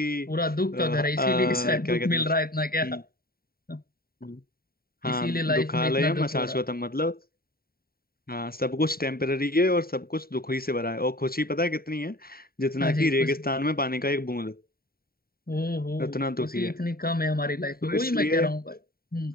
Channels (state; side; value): late; right; 0.43 ms